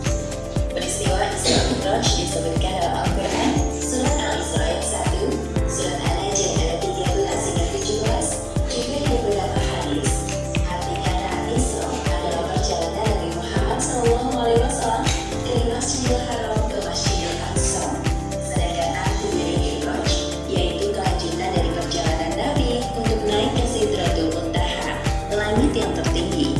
Peristiwa Isra Mi'raj disebutkan dalam Al-Quran, Surat Al-Isra ayat 1, Surat An-Najm ayat 13 hingga 17, juga di beberapa hadis. Arti kata Isra adalah perjalanan Nabi Muhammad SAW dari Masjidil Haram ke Masjidil Aqsa. Sedangkan arti dari Mi'raj yaitu kelanjutan dari perjalanan Nabi untuk naik ke Sidratul Muntaha, langit yang tertinggi.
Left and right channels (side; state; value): both; identical; correlation 1.00